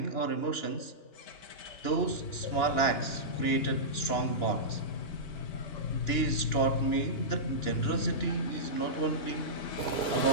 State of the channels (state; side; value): late; right; 2.9 ms